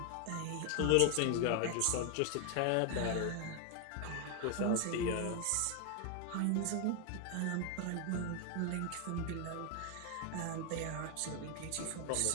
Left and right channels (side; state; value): both; different; correlation 0.00